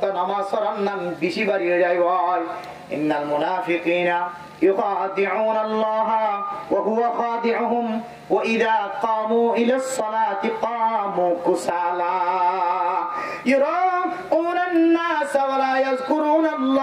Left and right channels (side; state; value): both; identical; correlation 1.00